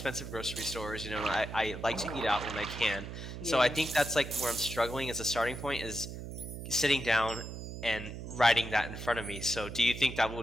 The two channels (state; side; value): noise; right; hum, 9 dB below the sound